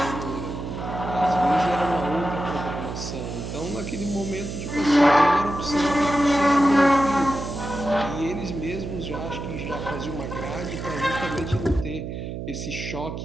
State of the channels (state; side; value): noise; right; hum, 6 dB below the sound